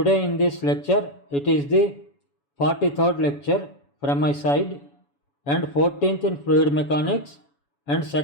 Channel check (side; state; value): right; late; 7.1 ms